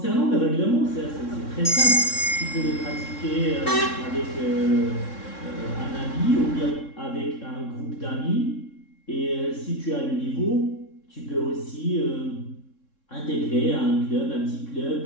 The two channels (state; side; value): late; right; 3.6 ms